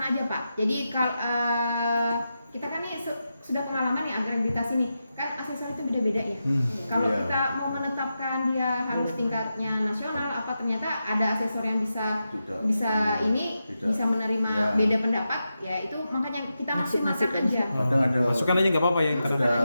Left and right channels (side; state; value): both; inverted; correlation -0.89